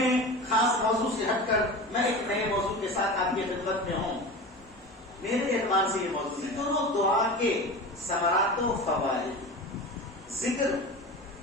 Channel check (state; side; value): normal; both; correlation 0.31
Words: خاص موضوع سے ہٹ کر میں ایک نئے موضوع کے ساتھ آپ کی خدمت میں ہوں. میرے اعتبار سے یہ موضوع ہے دونوں دعا کے ثمرات و فوائد. ذکر،